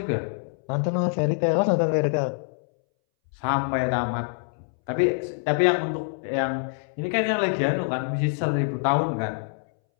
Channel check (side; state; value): right; silent; 61 dB below the other